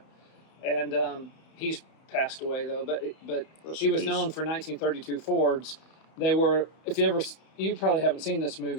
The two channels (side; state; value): right; late; 32 ms